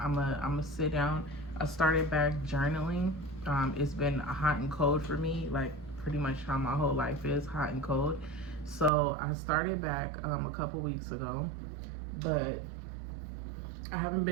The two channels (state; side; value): drops out; left; at 8.9 s